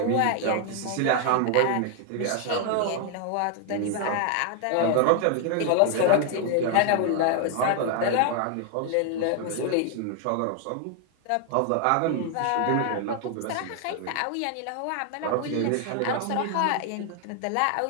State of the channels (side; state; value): both; different; correlation 0.00